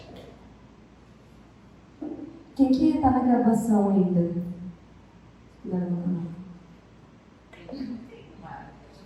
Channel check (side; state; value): both; identical; correlation 1.00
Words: Quem que está na graduação ainda? Não.